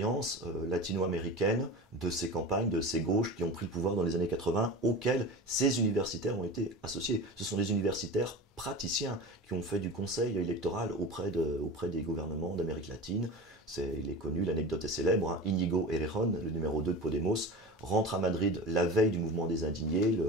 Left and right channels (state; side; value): normal; both; correlation 0.31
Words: latino-américaine de ces campagnes, de ces gauches qui ont pris le pouvoir dans les années 80, auxquelles ces universitaires ont été associés. Ce sont des universitaires praticiens qui ont fait du conseil électoral auprès des gouvernements d'Amérique latine. Il est connu, l'anecdote est célèbre, hein. Íñigo Errejón, le numéro 2 de Podemos, rentre à Madrid la veille du mouvement des indignés,